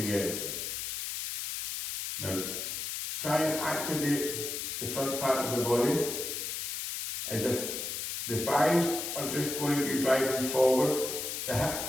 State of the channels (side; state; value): left; noise; hiss, 4 dB below the sound